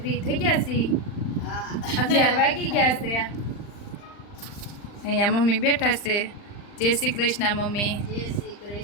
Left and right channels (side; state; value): right; late; 39 ms